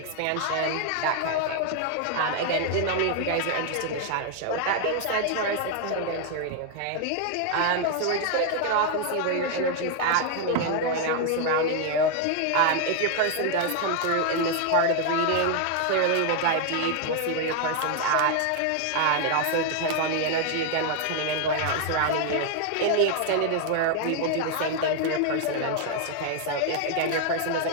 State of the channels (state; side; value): different; both; correlation 0.00